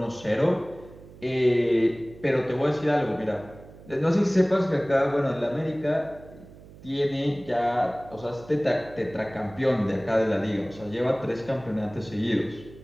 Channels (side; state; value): right; noise; hum, 20 dB below the sound